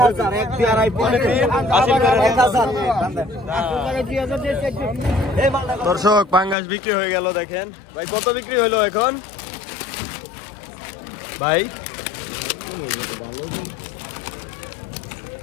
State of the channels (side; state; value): right; drops out; at 6.6 s